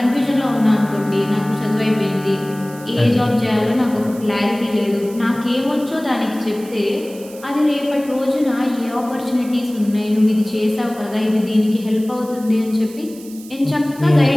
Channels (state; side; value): noise; right; hiss, 20 dB below the sound